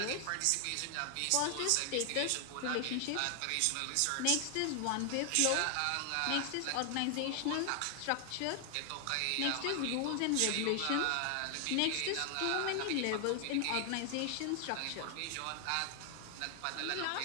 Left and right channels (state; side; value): different; both; correlation 0.00